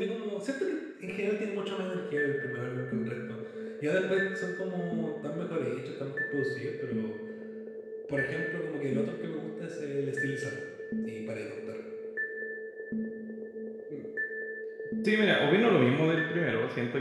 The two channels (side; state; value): both; identical; correlation 1.00